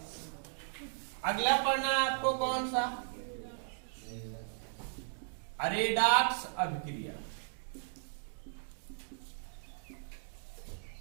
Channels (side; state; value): left; silent; digital silence